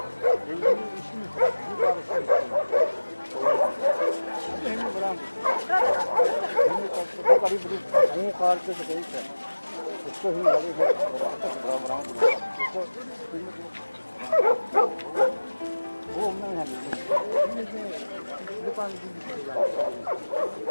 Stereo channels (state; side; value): inverted; both; correlation -1.00